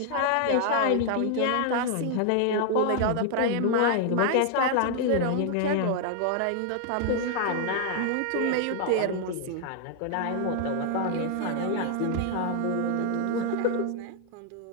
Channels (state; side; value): different; both; correlation 0.00